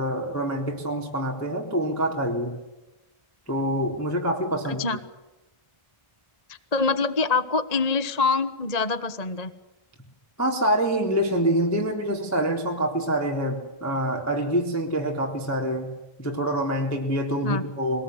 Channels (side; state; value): right; late; 1.8 ms